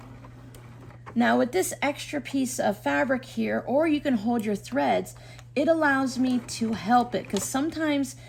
Now with this extra piece of fabric here, or you can hold your threads, it allows me to help it because sometimes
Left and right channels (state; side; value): identical; both; correlation 1.00